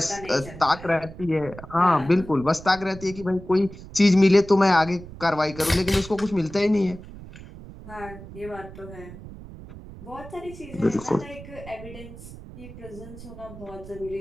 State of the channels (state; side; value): noise; right; rumble, 15 dB below the sound